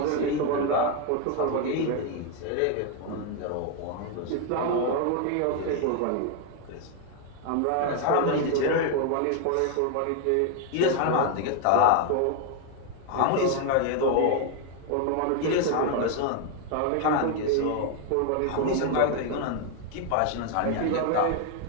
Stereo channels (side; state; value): both; different; correlation 0.01